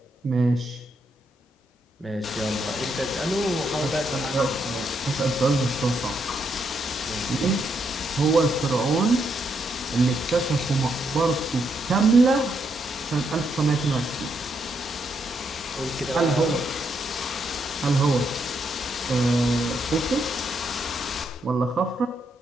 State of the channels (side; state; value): both; normal; correlation 0.78